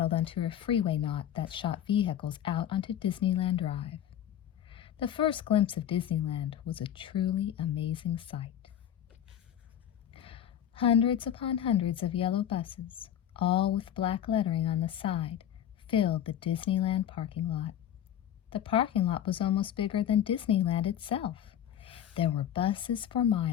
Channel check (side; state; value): right; quieter; 10.3 dB